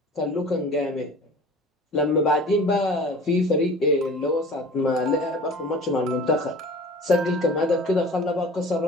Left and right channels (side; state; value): both; normal; correlation 0.42